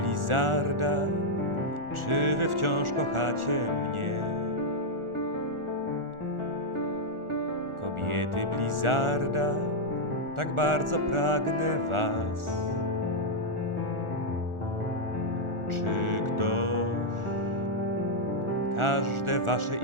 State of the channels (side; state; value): left; late; 1.4 ms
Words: czy wy wciąż kochacie mnie? Kobiety Blizzarda, tak bardzo pragnę was. Czy ktoś każde wasze